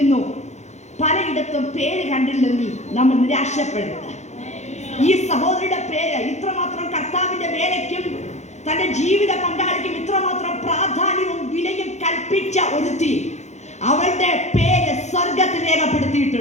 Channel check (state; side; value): late; right; 0.33 ms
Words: പലയിടത്തും പേര് കണ്ടില്ലെങ്കിൽ നമ്മൾ നിരാശപ്പെടരുത്. ഈ സഹോദരിയുടെ പേര് ഇത്രമാത്രം കർത്താവിന്റെ വേലയ്ക്കും തന്റെ ജീവിത പങ്കാളിക്കും ഇത്രമാത്രം പ്രാധാന്യവും വിലയും കൽപ്പിച്ച ഒരുത്തി, അവളുടെ പേര് സ്വർഗത്തിൽ